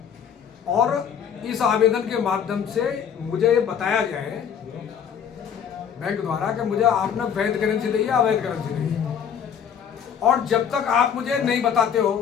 और इस आवेदन के माध्यम से मुझे ये बताया गया है बैंक द्वारा कि मुझे आपने वैध करेंसी दी है, अवैध करेंसी दी है। और जब तक आप मुझे नहीं बताते हो,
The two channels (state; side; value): quieter; right; 8.0 dB